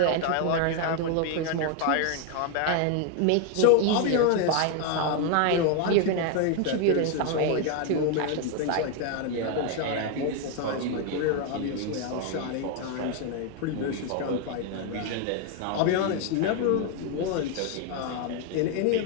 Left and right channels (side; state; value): both; different; correlation 0.01